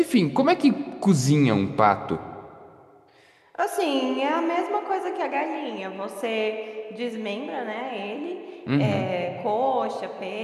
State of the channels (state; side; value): identical; both; correlation 1.00